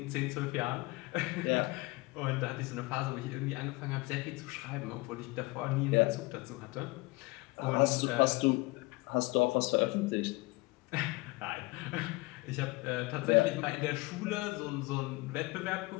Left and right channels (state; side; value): quieter; right; 23.4 dB